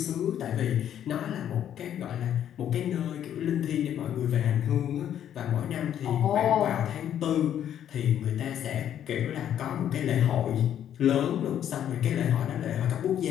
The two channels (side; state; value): right; quieter; 10.2 dB